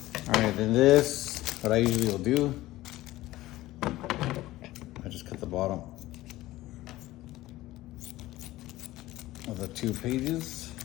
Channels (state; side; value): quieter; right; 16.8 dB